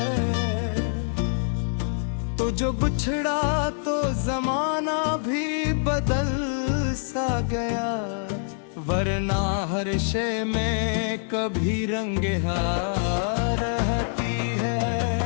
तो जो बिछड़ा तो जमाना भी बदल सा गया, वरना हर शय में कभी रंगे हार रहती है।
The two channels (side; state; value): right; silent; digital silence